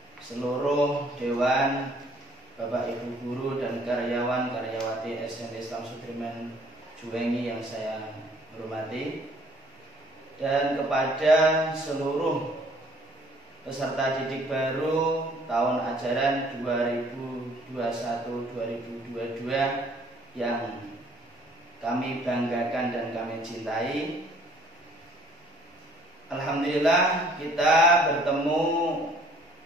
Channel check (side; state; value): both; normal; correlation 0.59